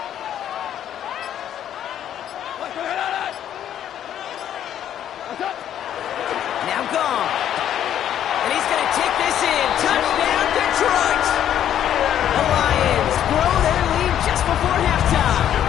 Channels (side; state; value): right; quieter; 10.5 dB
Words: Now gone. And he's going to take this in. Touchdown, Detroit! The Lions grow their lead just before halftime.